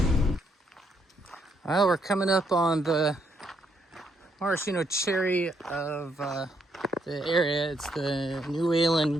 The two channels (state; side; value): normal; both; correlation 0.74